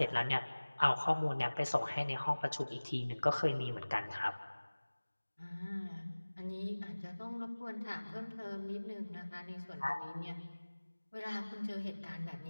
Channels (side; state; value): both; inverted; correlation -1.00